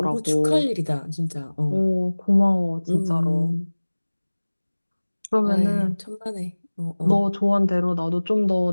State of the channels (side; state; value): both; inverted; correlation -1.00